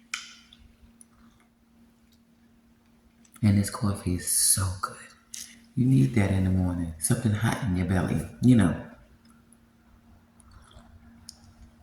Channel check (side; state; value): both; identical; correlation 1.00